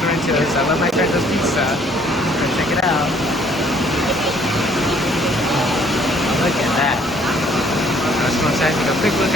I love my Sorrento's pizza. So check it out. Look at that. I just want to take a quick look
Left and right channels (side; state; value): both; normal; correlation 0.61